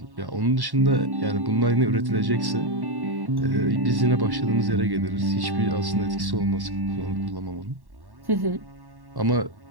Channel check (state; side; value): late; left; 1.1 ms